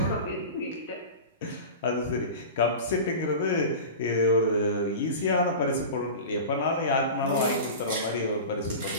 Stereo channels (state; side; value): inverted; both; correlation -0.31